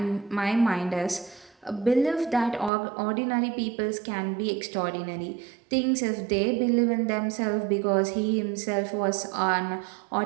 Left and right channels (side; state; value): left; drops out; at 2.7 s